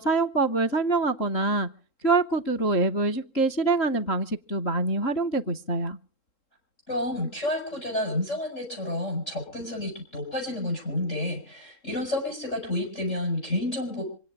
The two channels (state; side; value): late; right; 3.7 ms